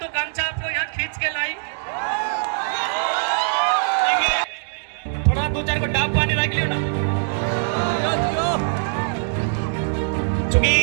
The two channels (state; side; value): silent; left; digital silence